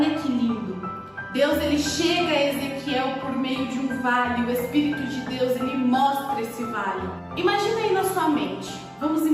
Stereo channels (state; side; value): identical; both; correlation 1.00